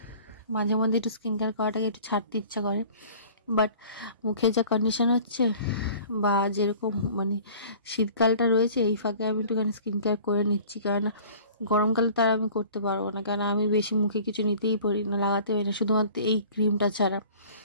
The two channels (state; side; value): inverted; both; correlation -0.47